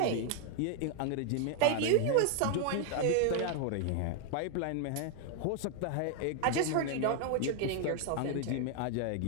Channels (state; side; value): different; both; correlation 0.00